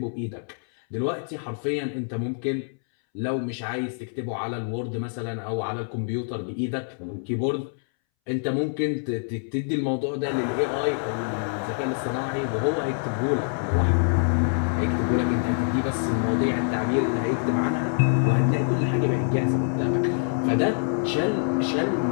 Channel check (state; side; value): silent; right; 61 dB below the other